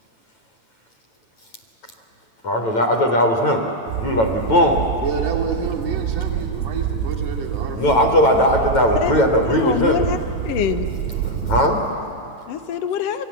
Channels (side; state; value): right; late; 9.0 ms